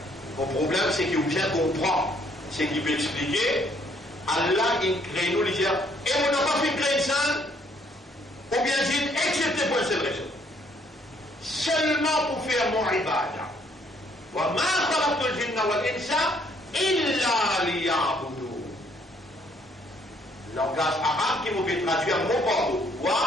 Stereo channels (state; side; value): normal; both; correlation 0.66